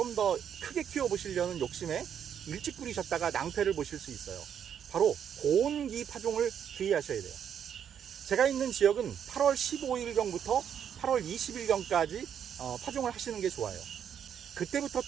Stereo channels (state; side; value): quieter; left; 8.6 dB